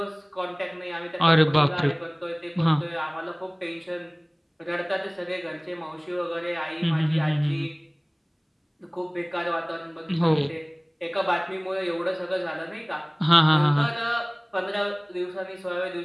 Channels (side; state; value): both; identical; correlation 1.00